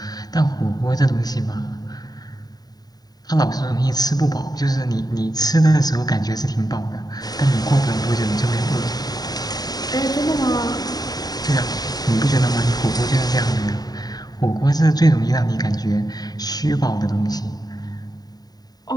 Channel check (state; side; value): late; right; 0.19 ms